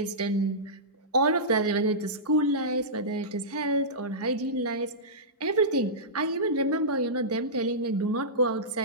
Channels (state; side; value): normal; both; correlation -0.16